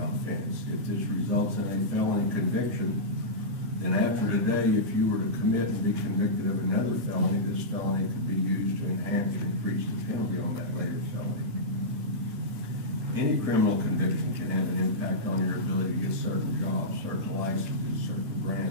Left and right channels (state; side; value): late; left; 8.9 ms